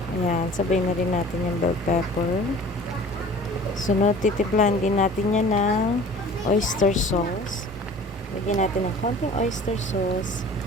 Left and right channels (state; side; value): normal; both; correlation 0.45